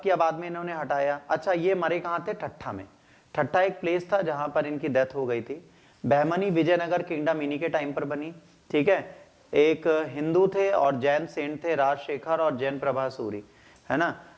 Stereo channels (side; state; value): both; identical; correlation 1.00